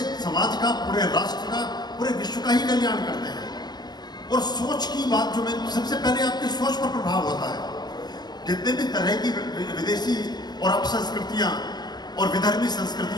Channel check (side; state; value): right; late; 0.20 ms